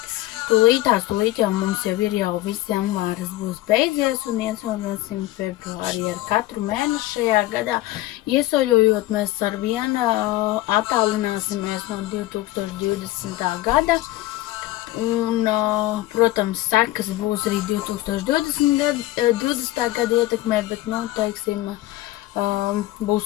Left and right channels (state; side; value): quieter; right; 16.8 dB